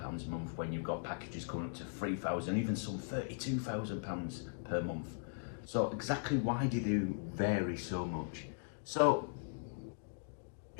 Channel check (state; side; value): silent; right; digital silence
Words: a month when you've got packages coming up to £3,000, even some £32,000 per month? So exactly why do they vary so much? So